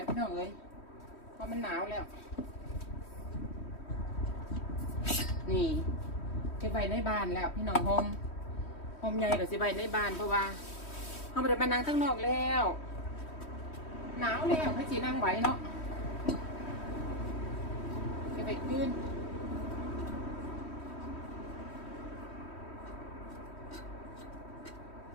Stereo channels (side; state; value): right; late; 3.1 ms